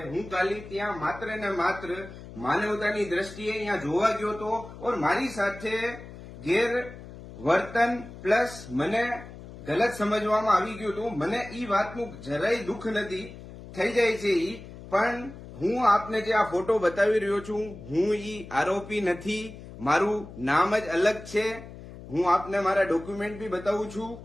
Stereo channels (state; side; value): noise; left; hum, 15 dB below the sound